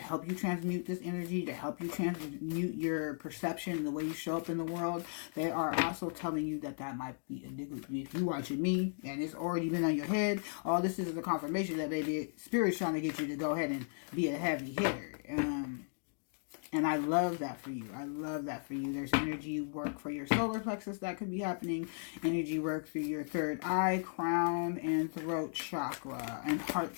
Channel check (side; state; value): right; silent; digital silence